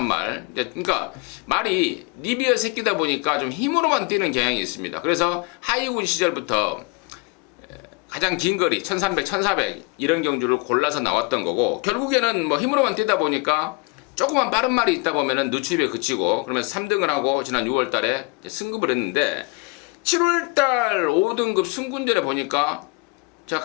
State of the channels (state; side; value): quieter; right; 29.2 dB